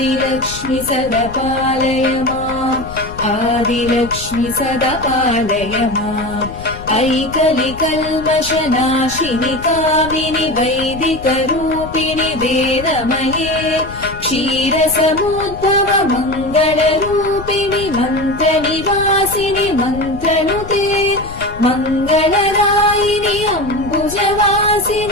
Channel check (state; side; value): noise; left; rumble, 13 dB below the sound